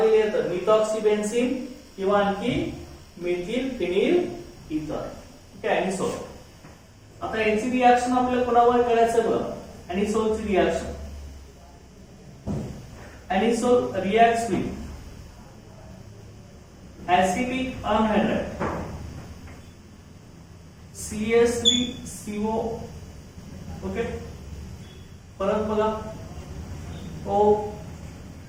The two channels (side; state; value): both; identical; correlation 1.00